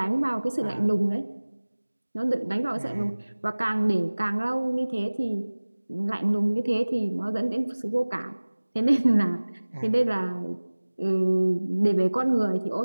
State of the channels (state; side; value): inverted; both; correlation -1.00